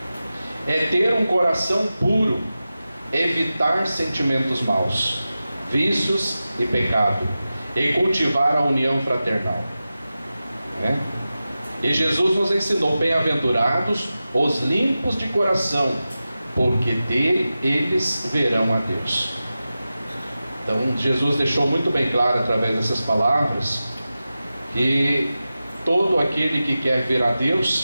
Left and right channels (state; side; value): inverted; both; correlation -0.94